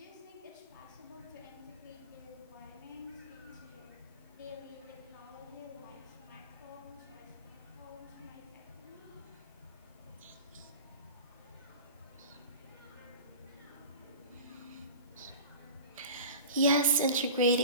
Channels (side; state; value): both; inverted; correlation -0.34